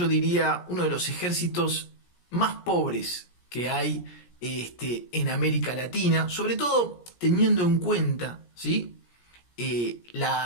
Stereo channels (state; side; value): late; right; 17 ms